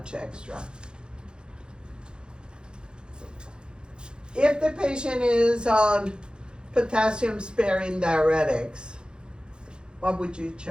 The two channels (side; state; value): left; late; 0.049 ms